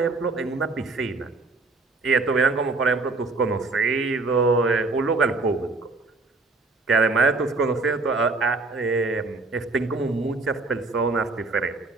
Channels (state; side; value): quieter; left; 3.6 dB